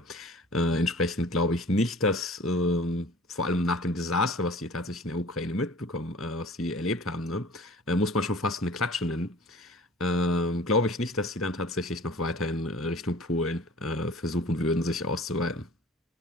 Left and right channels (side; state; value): both; normal; correlation 0.46